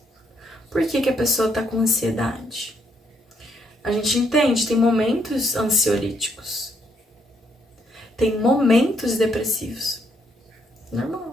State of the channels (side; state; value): both; normal; correlation 0.73